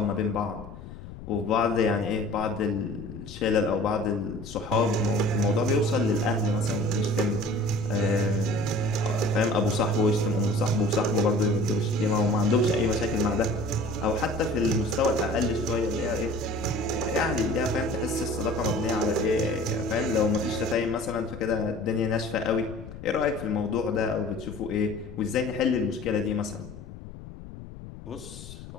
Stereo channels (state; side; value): noise; left; rumble, 14 dB below the sound